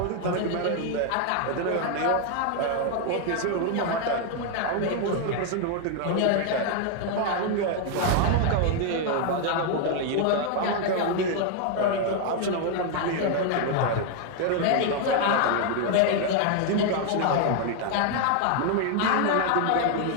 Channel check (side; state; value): both; different; correlation 0.00